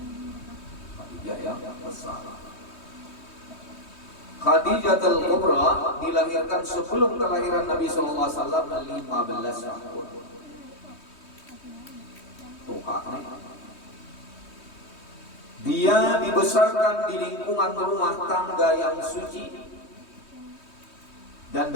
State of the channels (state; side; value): late; right; 3.2 ms